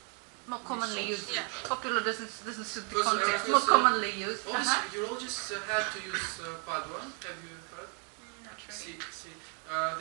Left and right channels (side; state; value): left; quieter; 37.6 dB